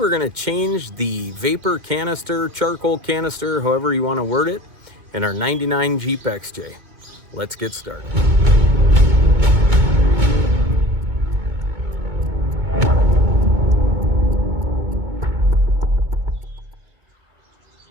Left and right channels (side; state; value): left; late; 2.3 ms